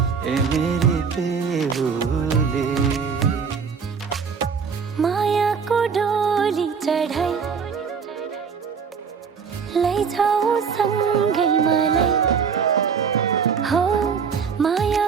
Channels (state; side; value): quieter; left; 6.2 dB